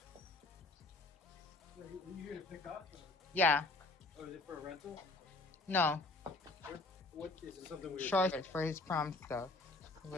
Are you here to pick up? Yeah. Or is it for a rental? No. What is it? Something weird? Short for his prom stuff.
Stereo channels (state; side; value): quieter; right; 3.0 dB